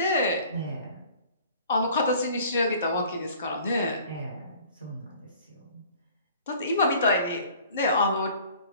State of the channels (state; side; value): inverted; both; correlation -0.50